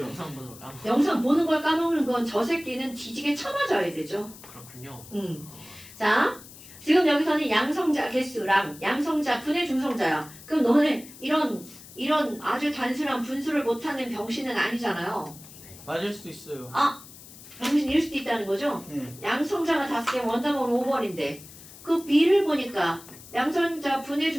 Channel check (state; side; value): noise; left; hiss, 18 dB below the sound